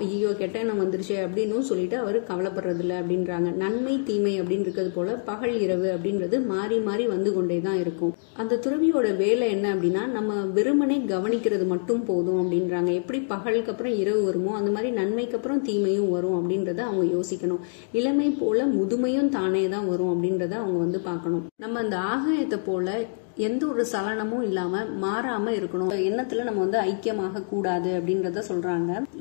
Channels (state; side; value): silent; right; digital silence